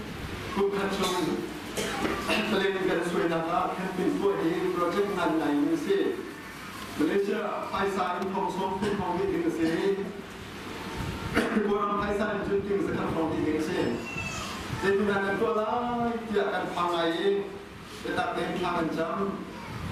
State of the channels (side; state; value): both; identical; correlation 1.00